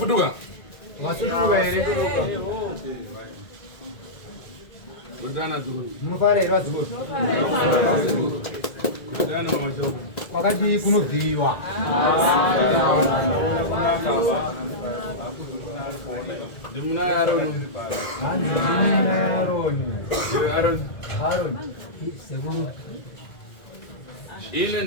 Masutuka ere. Udana zuru. Munofare era zuru. Udana mamacho. Wakati kunobviwa. Dimuna Aaron. Aaron. Seguru. Ile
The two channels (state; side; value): late; right; 2.0 ms